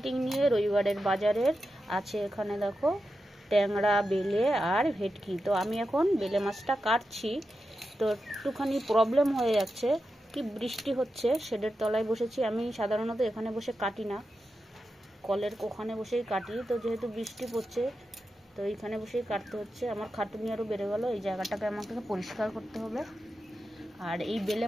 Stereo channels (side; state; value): both; normal; correlation 0.89